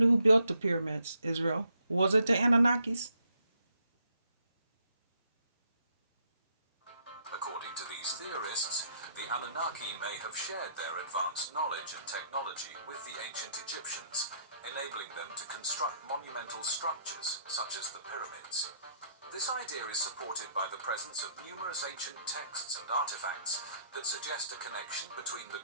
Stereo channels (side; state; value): both; inverted; correlation -0.70